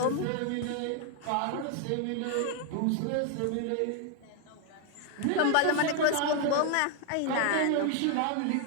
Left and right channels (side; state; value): both; different; correlation 0.01